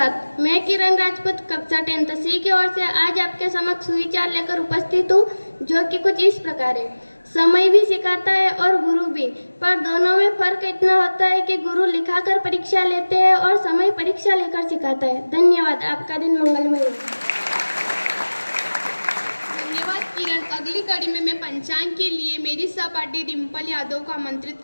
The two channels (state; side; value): inverted; both; correlation -1.00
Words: मैं किरण राजपूत कक्षा 10th सी की ओर से आज आपके समक्ष सुविचार लेकर उपस्थित हूँ, जो कि कुछ इस प्रकार है। समय भी सिखाता है और गुरु भी, पर दोनों में फर्क इतना होता है कि गुरु लिखाकर परीक्षा लेते हैं और समय परीक्षा लेकर सिखाता है। धन्यवाद। आपका दिन मंगलमय हो। धन्यवाद किरण। अगली कड़ी में मैं पंचांग के लिए मेरी सहपाठी डिम्पल यादव को आमंत्रित